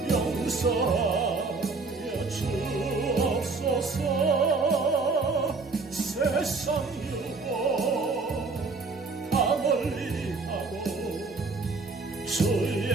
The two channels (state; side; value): quieter; left; 4.0 dB